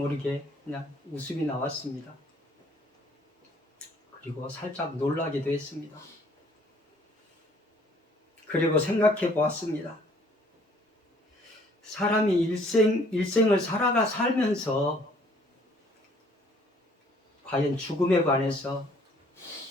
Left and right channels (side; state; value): both; normal; correlation 0.60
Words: 그냥 웃음이 나왔습니다. 그리고 살짝 놀라기도 했습니다. 그리고 생각해 보았습니다. 사람이 일생을 살면서 과연 죽음에 관해서